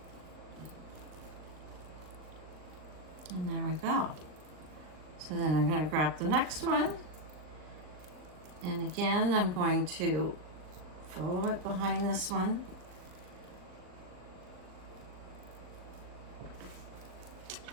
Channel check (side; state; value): left; late; 39 ms